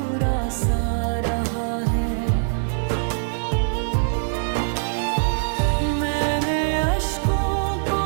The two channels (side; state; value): left; silent; digital silence